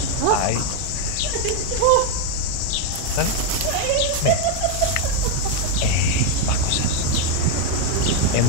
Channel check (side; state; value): both; different; correlation 0.01